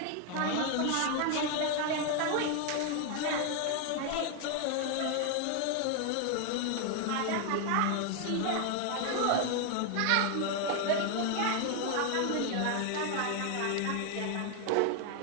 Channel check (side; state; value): both; different; correlation 0.01